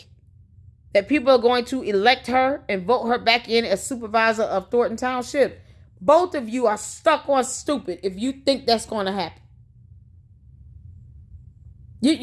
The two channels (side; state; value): both; identical; correlation 1.00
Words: that people are going to elect her and vote her back in as supervisor of Thornton Township? Both of you are stuck on stupid if you think that's going to happen.